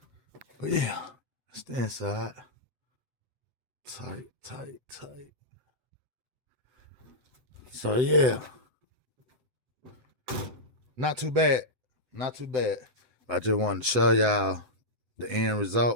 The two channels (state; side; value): late; left; 7.9 ms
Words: But yeah, it's the inside. Tight. So yeah, not too bad. I just wanted to show y'all the end